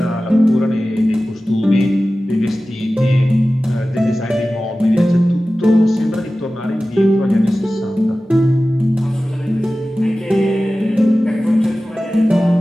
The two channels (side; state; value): both; normal; correlation 0.96